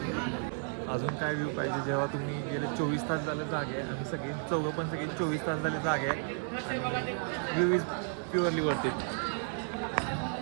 अजून काय व्ह्यू पाहिजे. जेव्हा तुम्ही गेले 24 तास झाले जागे आहे. आम्ही सगळे चौघं पण सगळे 24 तास झाले जागे आहे. आणि व्ह्यू इज प्युअरली वरती.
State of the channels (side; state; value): left; silent; 56 dB below the other